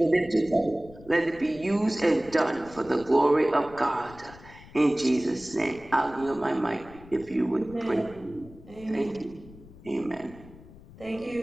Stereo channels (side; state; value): left; noise; rumble, 20 dB below the sound